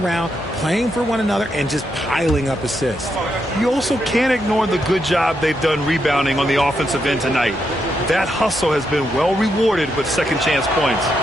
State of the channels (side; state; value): both; normal; correlation 0.81